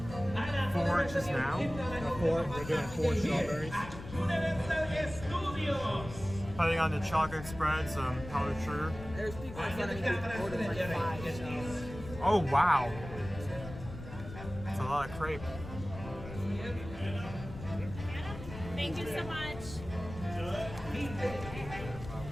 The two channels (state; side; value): noise; left; rumble, 12 dB below the sound